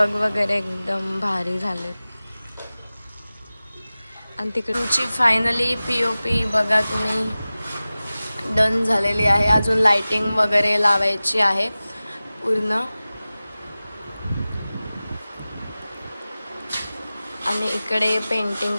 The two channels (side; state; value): both; inverted; correlation -0.97